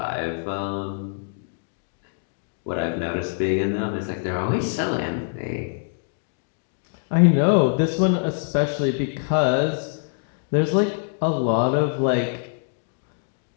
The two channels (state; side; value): silent; right; digital silence